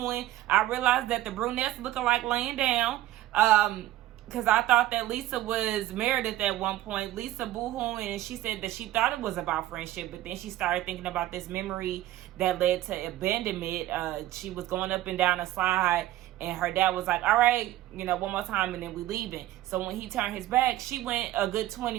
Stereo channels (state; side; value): quieter; left; 14.9 dB